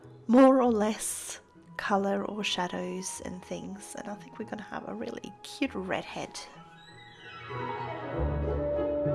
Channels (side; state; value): both; identical; correlation 1.00